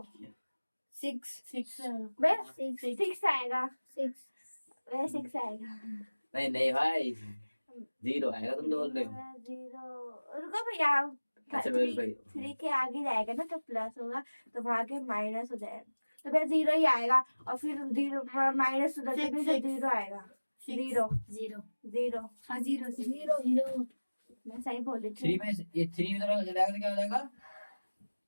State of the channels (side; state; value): both; inverted; correlation -1.00